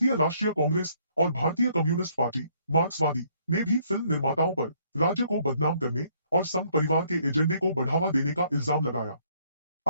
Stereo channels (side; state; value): both; inverted; correlation -0.66